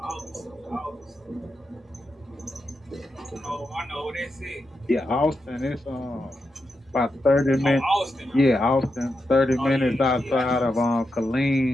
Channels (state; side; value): normal; both; correlation 0.87